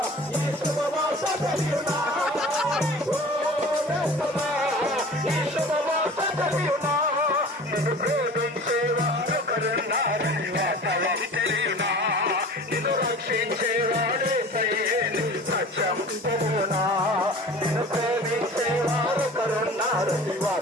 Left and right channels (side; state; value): both; normal; correlation 0.41